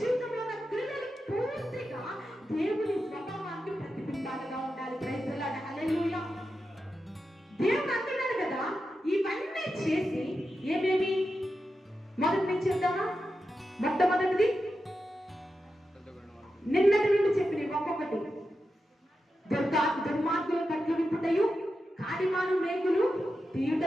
జీవితంలో ఉన్న క్రియలు పూర్తిగా దేవుని స్వభావానికి ప్రతిబింబాలుగా ఉండాలి. ప్రైజ్ ది లార్డ్, హల్లెలూయా. దేవుడు అంటున్నాడు కదా, ఇవన్నీ చేసి ఏమేమి మొదటి నుంచి చెప్తామా? మొట్టమొదటిది నిన్నటి నుండి చెప్పిన ఒక్కొక్కటి. దుర్మార్గుల కట్లు విప్పుటయు, కాడిమాను మేకులు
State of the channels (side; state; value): both; normal; correlation 0.89